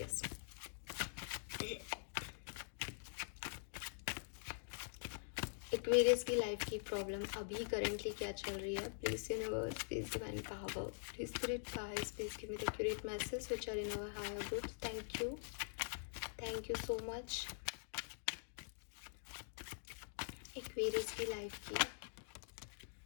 एक्वेरियस की लाइफ की प्रॉब्लम अभी करेंटली क्या चल रही है। Please universe, please divine power, please spirit guides, please give me the accurate message which are in our higher groups. Thank you so much. Aquarius की life की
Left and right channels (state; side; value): silent; right; digital silence